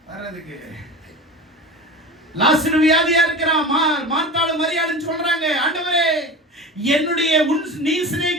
வரதுக்கு லாசரு வியாதியா இருக்கிறான், மார்த்தாளும் மரியாளும் சொல்றாங்க, ஆண்டவரே என்னுடைய நீ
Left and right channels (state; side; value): normal; both; correlation 0.31